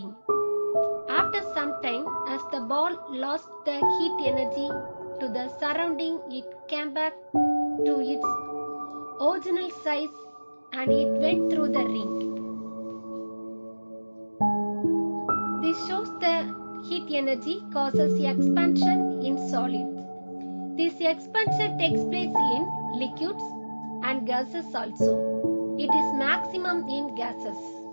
After some time, as the ball lost the heat energy to the surrounding, it came back to its original size and it went through the ring. This shows the heat energy causes expansion in solids. This expansion takes place in liquids and gases also. It is maximum in gases.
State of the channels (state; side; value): inverted; both; correlation -1.00